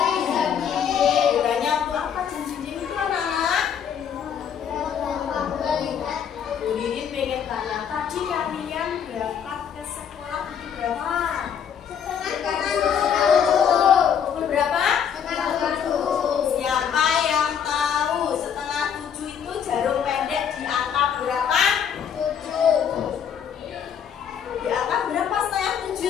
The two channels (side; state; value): right; quieter; 8.0 dB